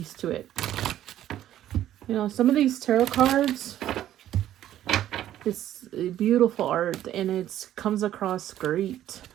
to it. You know, some of these tarot cards, it's beautiful art, and it comes across great.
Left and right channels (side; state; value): left; quieter; 12.2 dB